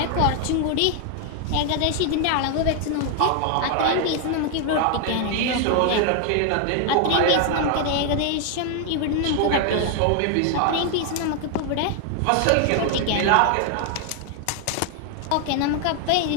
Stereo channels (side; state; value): both; different; correlation 0.00